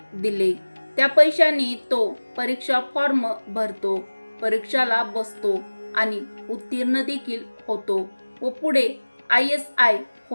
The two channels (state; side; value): inverted; both; correlation -1.00